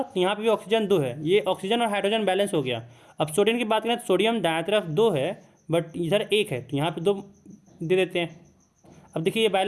तो यहाँ पे भी ऑक्सीजन 2 है, ये ऑक्सीजन और हाइड्रोजन बैलेंस हो गया। अब सोडियम की बात करें तो सोडियम दाएं तरफ 2 है बट इधर 1 है, तो यहाँ पे 2 दे देते हैं। अब देखिए ये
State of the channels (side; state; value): both; identical; correlation 1.00